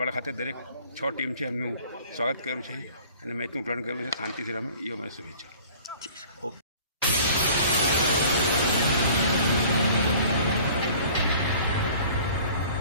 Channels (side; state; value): both; inverted; correlation -0.49